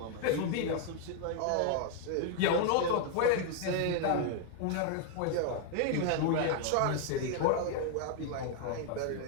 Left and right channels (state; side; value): different; both; correlation 0.00